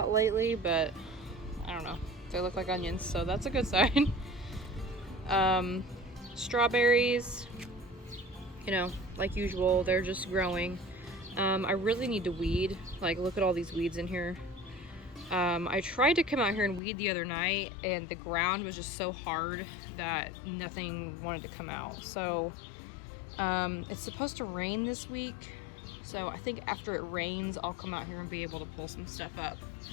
lately, but I don't know. They look like onions, so that's a good sign. Strawberries, you know, like usual, they're just growing. I really need to weed. Like, look at all these weeds in here. I tried to come out here and weed the other night, and the ground was just so hard that nothing wanted to come out. So it's supposed to rain this week, so I think after it rains I'll come out here and be able to pull some stuff up.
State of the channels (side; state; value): right; drops out; at 16.8 s